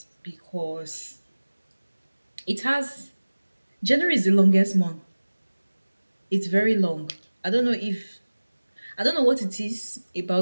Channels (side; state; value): both; inverted; correlation -1.00